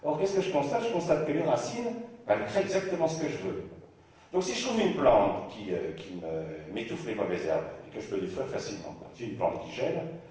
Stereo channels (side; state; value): both; identical; correlation 1.00